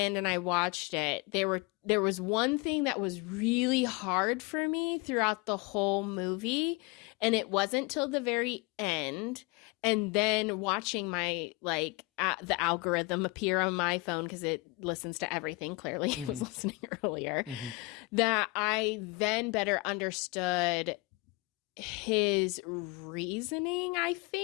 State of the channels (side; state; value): right; quieter; 25.4 dB